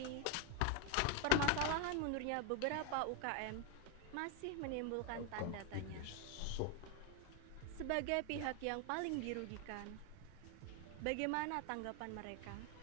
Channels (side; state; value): both; different; correlation 0.01